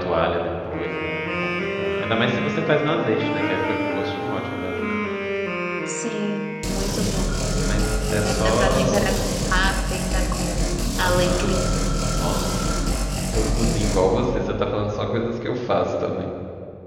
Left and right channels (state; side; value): identical; both; correlation 1.00